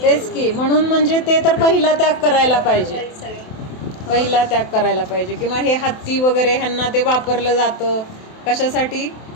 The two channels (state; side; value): late; right; 28 ms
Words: तेच की. म्हणून म्हणजे ते तर पहिला त्याग करायला पाहिजे. पहिला त्याग करायला पाहिजे. किंवा हे हत्ती वगैरे ह्यांना ते वापरलं जातं कशासाठी,